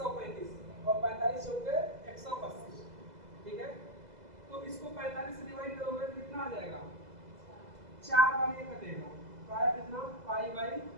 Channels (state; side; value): late; left; 2.0 ms